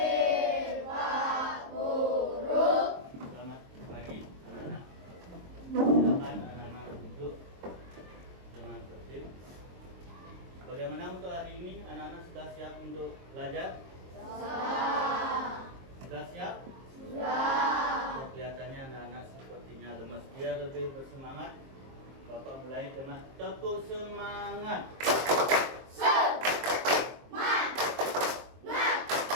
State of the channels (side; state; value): left; late; 23 ms